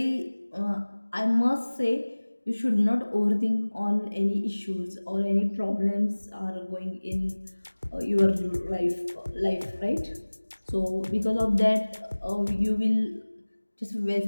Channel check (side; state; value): both; inverted; correlation -1.00